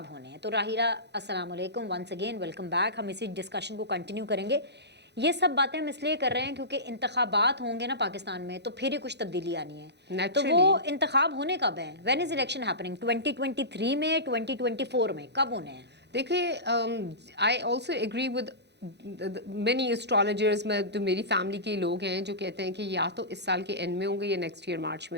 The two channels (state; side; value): late; left; 0.50 ms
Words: होने हैं। तो राहिला, अस्सलाम वालेकुम, वंस अगेन वेलकम बैक। हम इसी डिस्कशन को कंटिन्यू करेंगे। ये सब बातें हम इसलिए कर रहे हैं क्योंकि इंतखाबात होंगे ना पाकिस्तान में तो फिर ही कुछ तब्दीली आनी है। तो वो इंतखाब होने कब हैं? When is election happening? 2023 में, 2024 में, कब होने हैं? देखिए, I also agree with many astrologers में, तो मेरी फैमिली के लोग हैं जो कहते हैं कि या तो इस साल के एंड में होंगे या नेक्स्ट ईयर मार्च